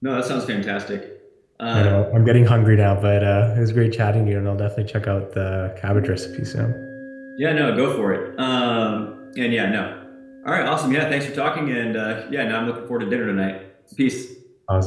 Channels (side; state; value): both; identical; correlation 1.00